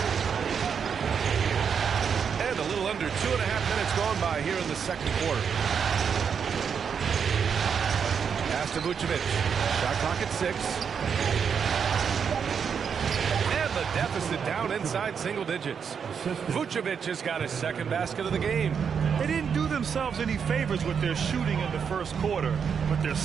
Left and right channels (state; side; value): quieter; left; 6.9 dB